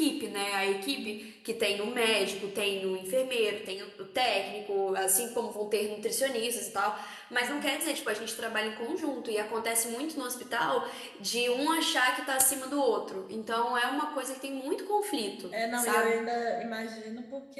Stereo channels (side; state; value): both; identical; correlation 1.00